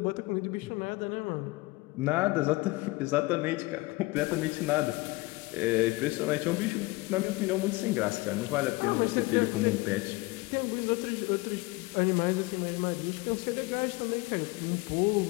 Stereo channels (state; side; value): quieter; right; 22.8 dB